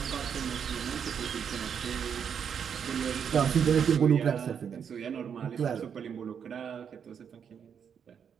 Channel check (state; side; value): quieter; left; 7.5 dB